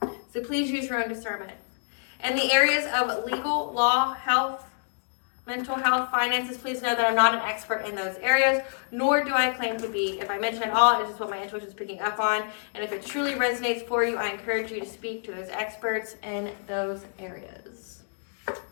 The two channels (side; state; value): right; silent; digital silence